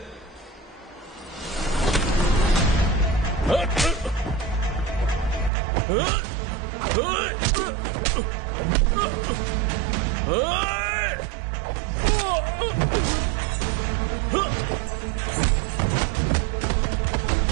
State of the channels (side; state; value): left; drops out; at 5.5 s